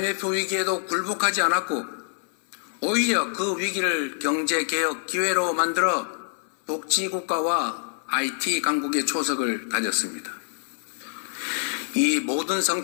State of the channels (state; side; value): silent; right; 57 dB below the other